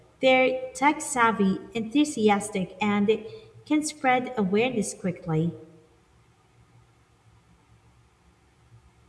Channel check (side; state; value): both; identical; correlation 1.00